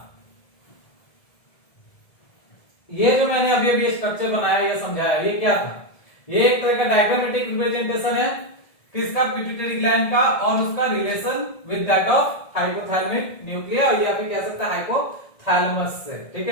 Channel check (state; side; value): late; right; 1.7 ms